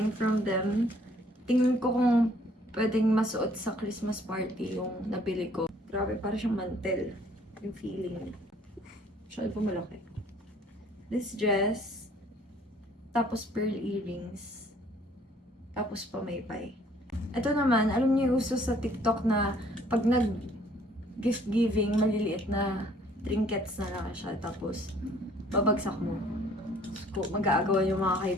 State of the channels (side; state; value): both; normal; correlation 0.59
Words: from them. Tingnan ko kung pwedeng masuot sa Christmas party yung nabili ko. Grabe, parang siyang mantel. Yung feeling niya. Masyado po malaki. This dress. Tapos pearl earrings. Tapos pamaypay. Ito naman, alam niyo yung uso sa TikTok na pag gift giving, maliliit na trinkets na lang siya. Tapos, babagsak mo. Mag-aagawan yung mga